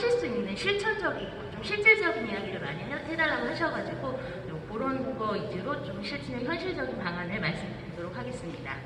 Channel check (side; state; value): both; identical; correlation 1.00